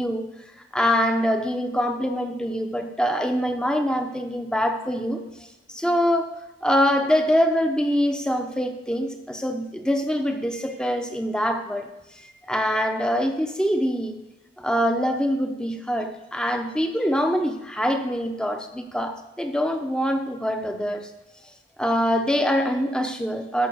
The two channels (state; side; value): normal; both; correlation 0.82